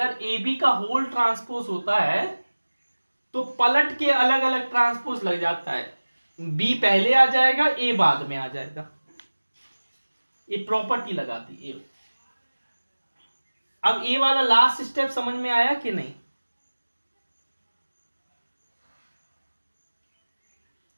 ए बी का होल ट्रांसपोज होता है तो पलट के अलग अलग ट्रांसपोज लग जाता है, बी पहले आ जाएगा, ए बाद में आ जाएगा, ये प्रॉपर्टी लगाती है। अब ए वाला लास्ट स्टेप समझ में आया कि नहीं?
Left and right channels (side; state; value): both; inverted; correlation -1.00